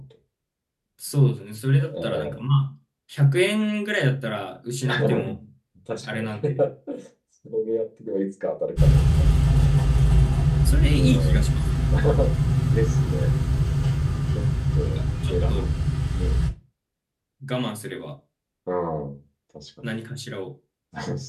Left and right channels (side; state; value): both; identical; correlation 1.00